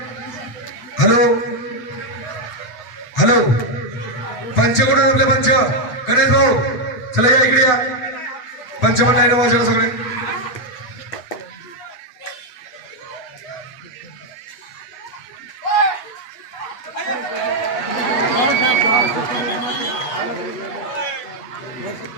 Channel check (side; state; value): right; late; 7.9 ms